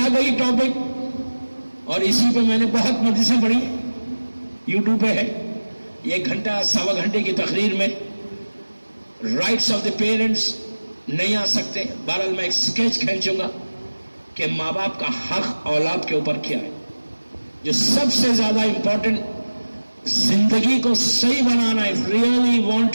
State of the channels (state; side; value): inverted; both; correlation -1.00